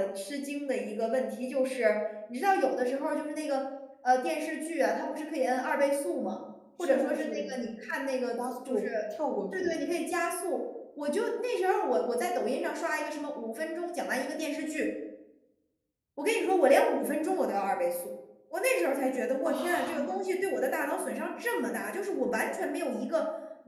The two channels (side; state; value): both; identical; correlation 1.00